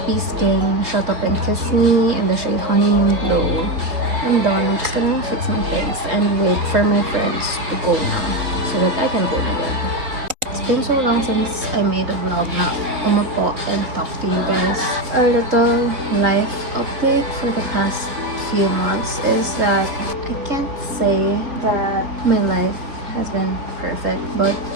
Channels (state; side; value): late; left; 4.0 ms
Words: Skin Shut Up and Kiss Me in the shade Honeymoon Glow. I'm done. I'm just gonna fix my things and wait for my friends to go now so that I can go na din. It's been so long since I made a vlog na umapo and talk to you guys. Our little life update for the past few months is that I can't say that my life has been perfect, but